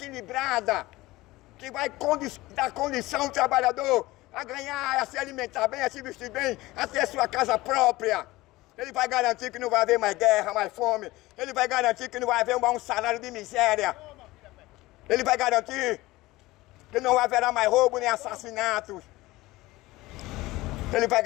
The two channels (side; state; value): right; quieter; 19.2 dB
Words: que vai dar condição ao trabalhador a ganhar, a se alimentar bem, a se vestir bem, a ter sua casa própria. Ele vai garantir que não vai haver mais guerra, mais fome. Ele vai garantir que não vai haver um salário de miséria. Ele vai garantir que não haverá mais roubo nem assassinatos. Ele vai